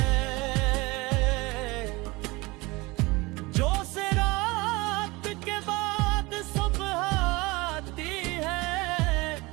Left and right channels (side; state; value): left; quieter; 23.4 dB